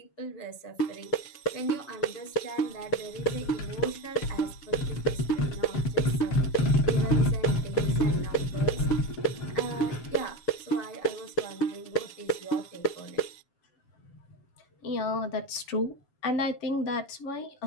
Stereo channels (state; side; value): late; right; 7.1 ms